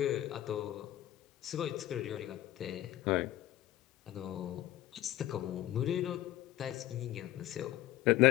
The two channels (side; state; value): right; quieter; 14.3 dB